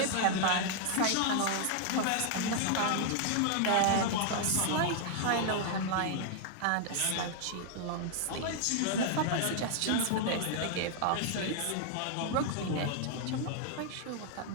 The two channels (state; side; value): different; both; correlation 0.00